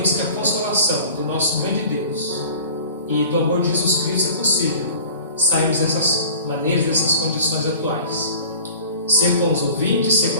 que a consolação do nosso grande Deus e do amor de Jesus Cristo é possível sairmos dessas maneiras, dessas condições atuais. Ser com os ouvintes, ser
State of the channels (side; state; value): both; inverted; correlation -0.44